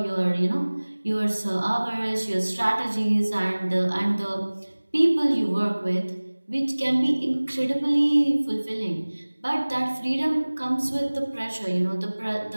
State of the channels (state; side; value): inverted; both; correlation -1.00